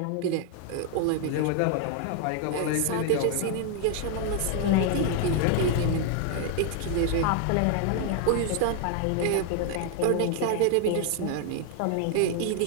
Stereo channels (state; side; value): different; both; correlation 0.00